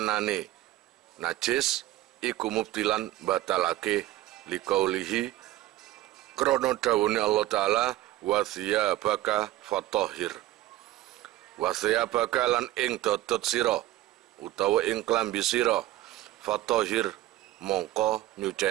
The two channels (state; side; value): quieter; left; 15.5 dB